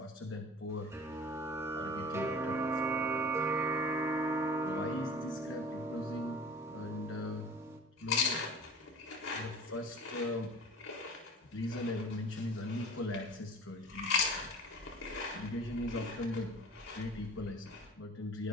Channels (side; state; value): both; normal; correlation 0.41